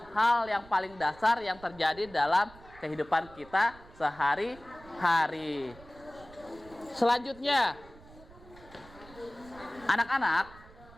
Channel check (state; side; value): noise; right; rumble, 21 dB below the sound